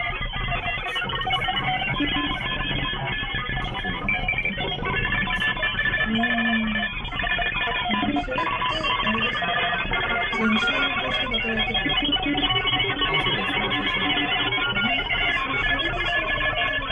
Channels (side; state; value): both; identical; correlation 1.00